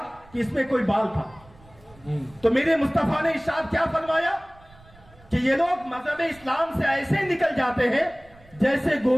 कि इसमें कोई बाल था। तो मेरे मुस्तफा ने इरशाद क्या फरमाया कि ये लोग मजहब इस्लाम से ऐसे निकल जाते हैं जैसे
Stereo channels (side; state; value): right; noise; rumble, 26 dB below the sound